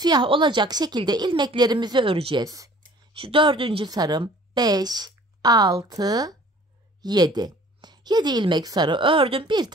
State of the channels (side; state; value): both; normal; correlation 0.51